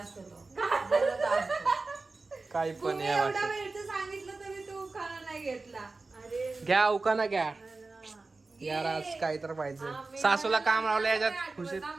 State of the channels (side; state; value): left; quieter; 3.6 dB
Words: तो. बोलत असतो. काय पण तुम्ही या एवढा वाटत. वेळचं सांगितलं तरी तो उखाणा नाही घेतला. अरे घ्या उखाणा घ्या घे. यार आज काय तर पाहिजे. आम्ही- सासूला काम लावलं मला याच्यात नाही खुशीत आठवत